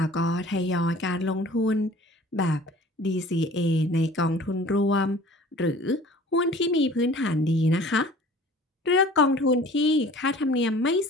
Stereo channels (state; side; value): normal; both; correlation 0.47